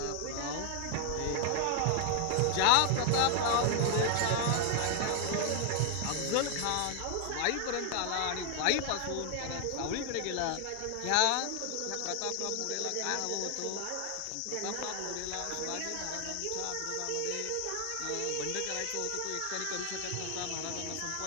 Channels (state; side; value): different; both; correlation 0.00